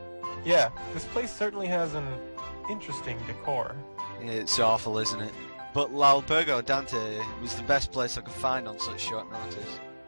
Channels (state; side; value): inverted; both; correlation -1.00